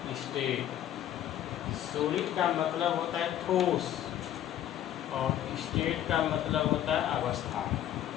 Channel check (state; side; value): quieter; right; 11.6 dB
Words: स्टेट। सॉलिड का मतलब होता है ठोस और स्टेट का मतलब होता है अवस्था।